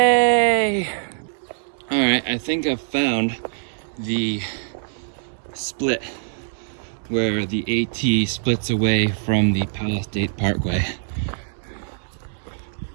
All right, I think I've found the split where the AT splits away from the Palace State Parkway.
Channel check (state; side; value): silent; left; 63 dB below the other